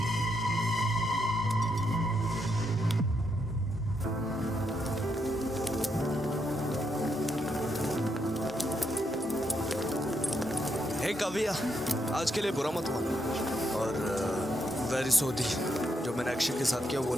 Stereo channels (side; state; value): both; normal; correlation 0.79